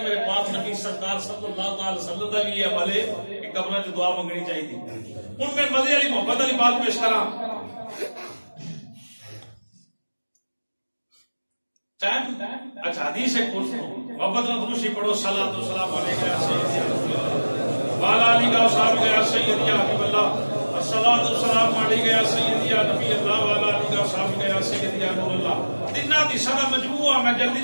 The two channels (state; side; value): inverted; both; correlation -1.00